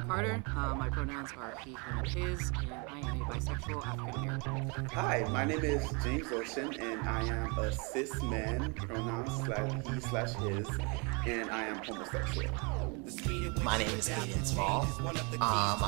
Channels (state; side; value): quieter; left; 32.4 dB